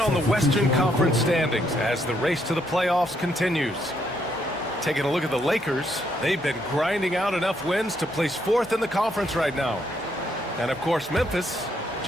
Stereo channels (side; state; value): both; normal; correlation 0.74